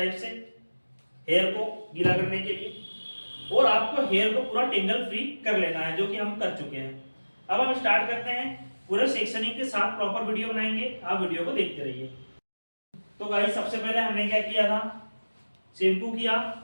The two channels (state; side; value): inverted; both; correlation -1.00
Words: से, हेयर को गीला करने के लिए। और आपको हेयर को पूरा टेंगल फ्री कर लेना है, जो कि हम कर चुके हैं। अब हम स्टार्ट करते हैं, पूरे सेक्शनिंग के साथ प्रॉपर वीडियो बनाएंगे, आप वीडियो को देखते रहिए। तो गाइस सबसे पहले हमने क्या किया था, शैम्पू किया,